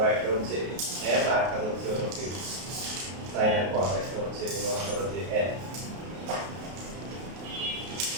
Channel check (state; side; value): late; left; 32 ms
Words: একটা হচ্ছে m আর একটা হচ্ছে সাইন এর কস একটা হচ্ছে মনে করো যে n